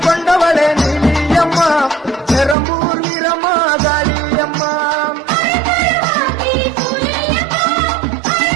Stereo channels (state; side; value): drops out; left; at 2.6 s